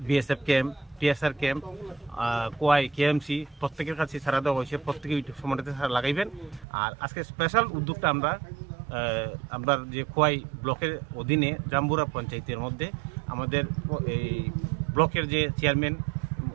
BSF camp, TSR camp, কোয়াই KMC প্রত্যেকের কাছে সারা দেওয়া হয়েছে। প্রত্যেকে সময়টাতে সারা লাগাইবেন। আর আজকে স্পেশাল উদ্যোগটা আমরা যে খোয়াই ব্লকের অধীনে জাম্বুরা পঞ্চায়েতের মধ্যে আমাদের এই ব্লকের যে চেয়ারম্যান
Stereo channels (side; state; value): left; drops out; at 6.7 s